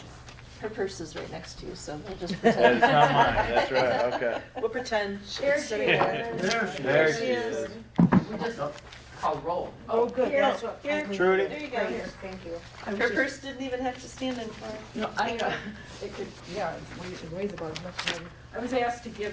Her purse is right next to you, so we'll just That is pretend. not mine, that's right, okay. We'll pretend There it's she sitting there. is. There she she is. is. We just, I'll roll. Oh, good, Here. that's what. Here. Trudy? There you go. Right here, thank you. Her purse didn't even have to stand in for her. No, it could, yeah, it weighs about as much as I was asked to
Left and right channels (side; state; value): both; identical; correlation 1.00